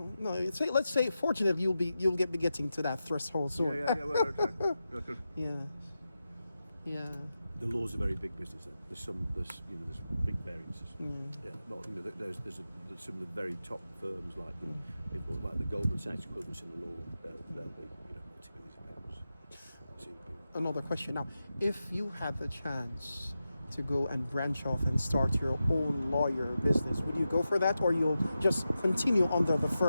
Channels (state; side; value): inverted; both; correlation -0.91